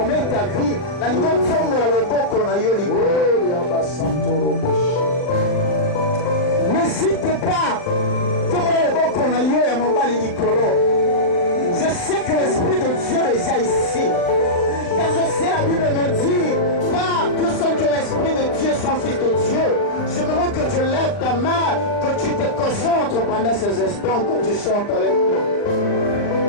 ta vie. N'hésite pas. Je sais que l'Esprit de Dieu est déjà ici. Car je sais, la Bible me dit, pas tous ceux que l'Esprit de Dieu sont fils de Dieu. Je veux que tu lèves ta main, que tu te concentres pendant ces instants, que tu chantes avec moi.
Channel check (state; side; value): late; right; 39 ms